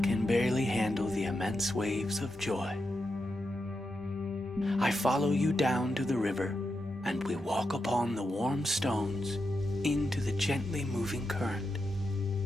can barely handle the immense waves of joy. I follow you down to the river, and we walk upon the warm stones into the gently moving current.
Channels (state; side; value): normal; both; correlation 0.87